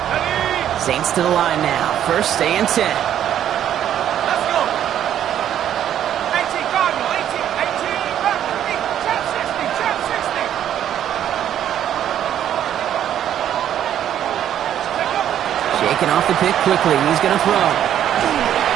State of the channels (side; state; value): left; quieter; 10.5 dB